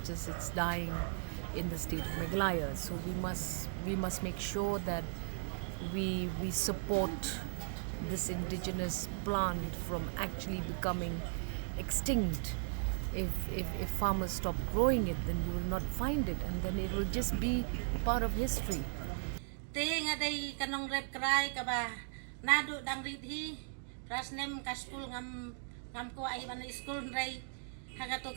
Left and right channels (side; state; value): left; silent; digital silence